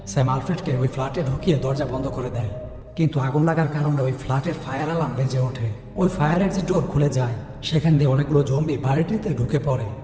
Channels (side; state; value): both; identical; correlation 1.00